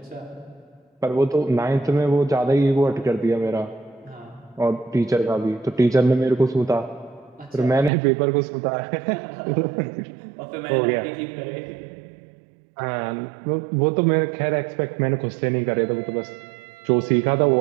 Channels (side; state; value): left; drops out; at 7.9 s